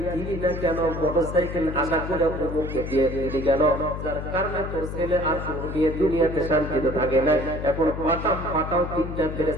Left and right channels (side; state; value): left; noise; hum, 6 dB below the sound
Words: দিলি না কেন, মোটরসাইকেল আশা করে অমুককে দিয়ে দিলি কেন, যার কারণে তোর ছেলে আর তোর মেয়ে দুনিয়াতে শান্তিতে থাকে না। এখন পাঠাও তিনটা